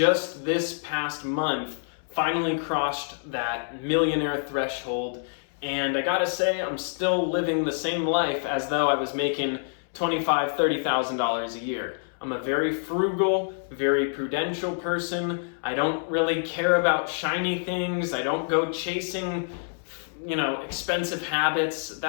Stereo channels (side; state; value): right; silent; 60 dB below the other